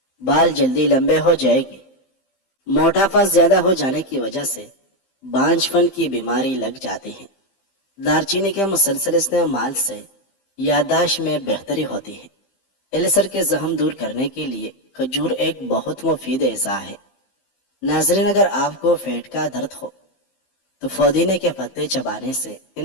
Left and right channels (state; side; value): late; right; 15 ms